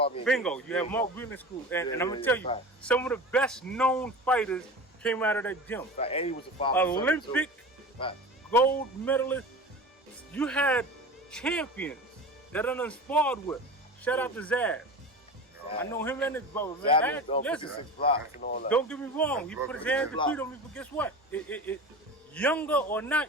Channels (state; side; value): normal; both; correlation 0.32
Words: and bingo. Gates. You have Mark Whelan School, and I'm gonna tell you, some of the best known fighters came out of that gym. And he was a Olympic gold medalist. You had champions that I done sparred with. Shout out to Zaz. I know him and his brother. Man. Listen, don't get me wrong. He put his hands and feet on me, but guess what? Younger or